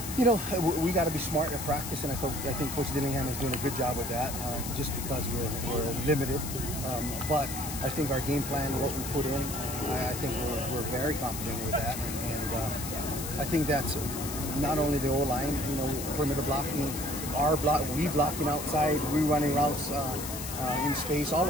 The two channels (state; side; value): noise; left; hiss, 7 dB below the sound